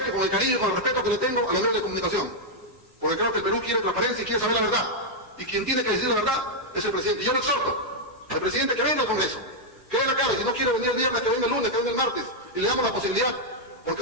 con el cariño y con el respeto que le tengo a los medios de comunicación. Porque creo que el Perú quiere transparencia y quiere saber la verdad. Y quien tiene que decir la verdad es el presidente. Y yo le exhorto al presidente que venga al Congreso, que venga acá, y si no quiere venir el viernes, que venga el lunes, que venga el martes, y le damos la posibilidad,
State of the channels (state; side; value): normal; both; correlation -0.03